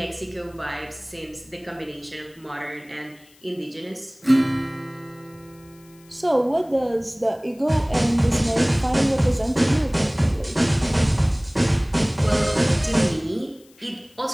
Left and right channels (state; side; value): noise; left; hiss, 28 dB below the sound